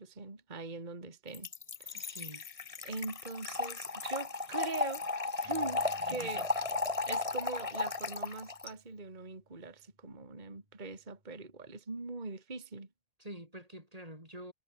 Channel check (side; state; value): left; late; 1.6 ms